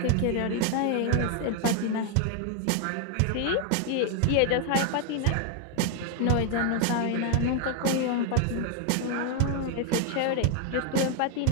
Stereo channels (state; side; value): different; both; correlation 0.00